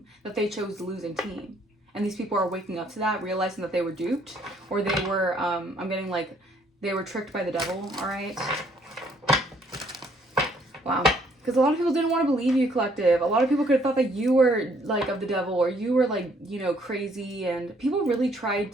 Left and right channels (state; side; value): normal; both; correlation 0.65